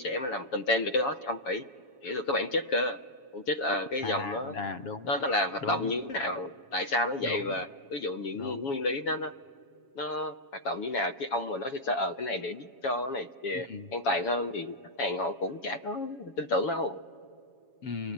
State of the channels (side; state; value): right; late; 7.3 ms